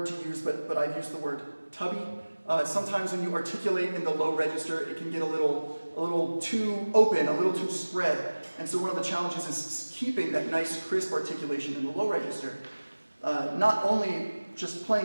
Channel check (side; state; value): both; inverted; correlation -1.00